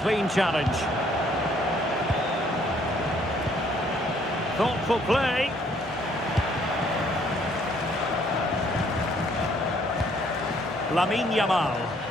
Clean challenge. Thoughtful play. Lamine Yamal.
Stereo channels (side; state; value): both; normal; correlation 0.64